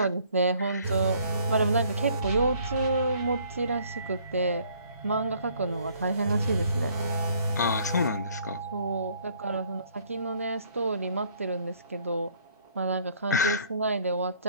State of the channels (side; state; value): both; inverted; correlation -0.61